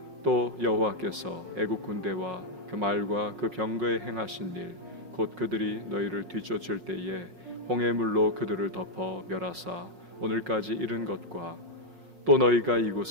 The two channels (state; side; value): late; left; 5.5 ms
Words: 또 여호와께서 애굽 군대와 그 말과 그 병거에 행하신 일 곧 그들이 너희를 뒤쫓을 때에 홍해물로 그들을 덮어 멸하사 오늘까지 이른 것과 또 너희가